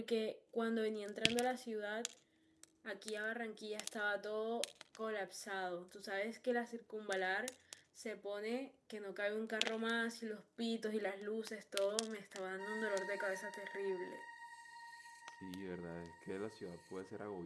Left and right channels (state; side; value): identical; both; correlation 1.00